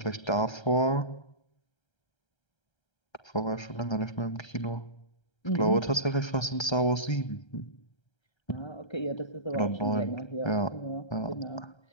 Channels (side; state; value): right; late; 1.3 ms